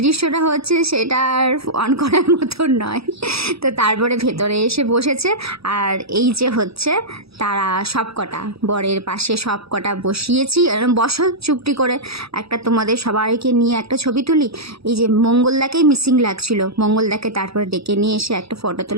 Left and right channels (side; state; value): left; late; 0.77 ms